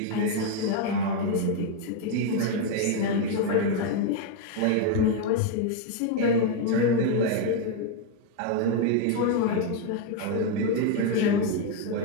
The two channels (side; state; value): both; different; correlation 0.01